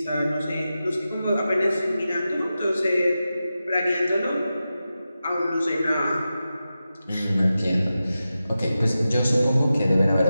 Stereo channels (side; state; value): both; inverted; correlation -0.92